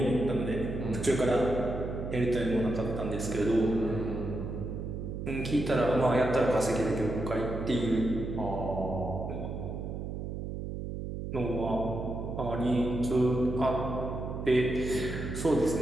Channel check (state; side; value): noise; right; hum, 6 dB below the sound